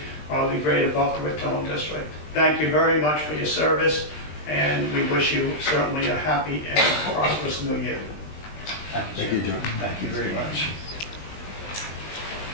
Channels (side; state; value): right; late; 20 ms